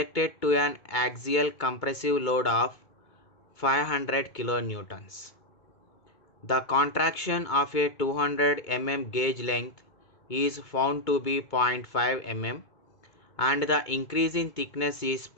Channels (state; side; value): late; right; 2.2 ms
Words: to an axial compressive load of 500 kilonewtons. The contraction of a 200 mm gauge length is found to be 0.5 mm and the increase in thickness is